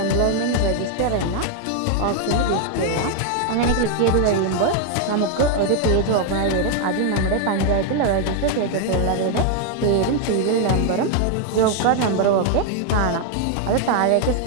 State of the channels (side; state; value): both; different; correlation 0.00